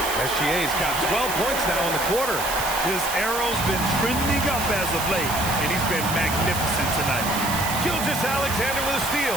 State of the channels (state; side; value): noise; right; hiss, 5 dB below the sound